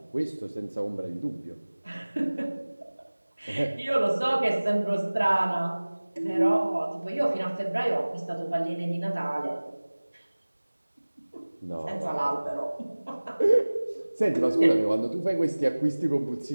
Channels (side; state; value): both; inverted; correlation -1.00